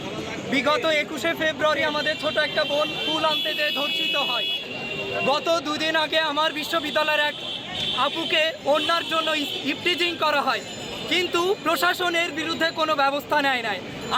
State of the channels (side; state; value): both; identical; correlation 1.00